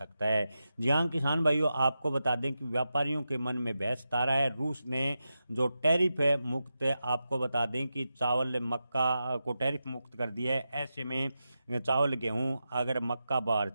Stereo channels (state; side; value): inverted; both; correlation -0.90